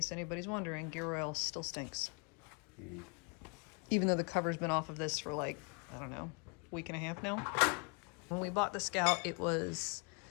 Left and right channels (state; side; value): quieter; right; 33.8 dB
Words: anybody's wondering, gear oil still stinks. Even though the cover's been off of this for like, I don't know, a week and a half now. When we bought the Scout, it was